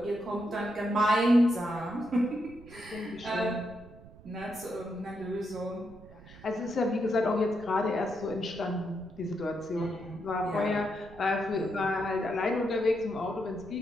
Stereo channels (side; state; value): right; noise; rumble, 20 dB below the sound